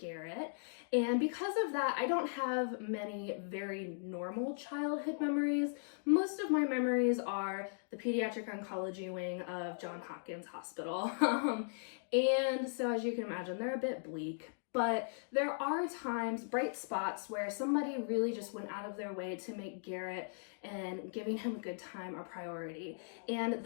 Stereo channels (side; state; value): right; silent; digital silence